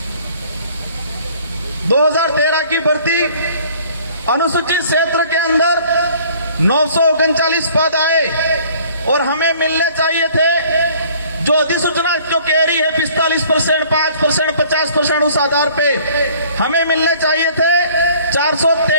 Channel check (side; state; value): both; inverted; correlation -0.54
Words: 2013 की भर्ती अनुसूचित क्षेत्र के अंदर 939 पद आए, और हमें मिलने चाहिए थे जो अधिसूचना जो कह रही है 45%, 5%, 50% उस आधार पे हमें मिलने चाहिए थे